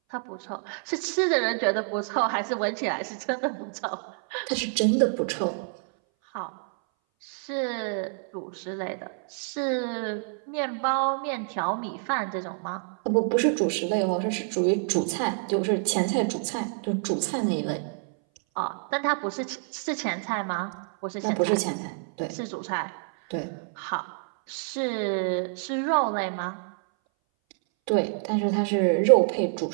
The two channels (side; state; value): left; silent; 59 dB below the other